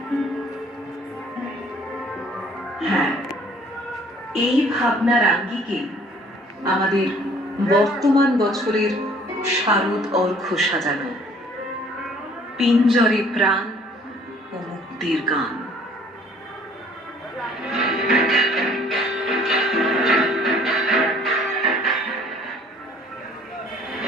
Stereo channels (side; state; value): both; normal; correlation 0.56